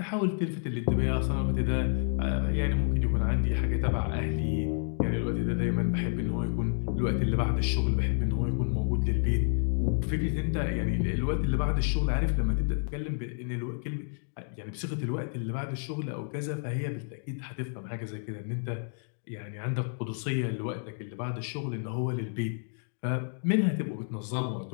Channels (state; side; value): silent; right; 58 dB below the other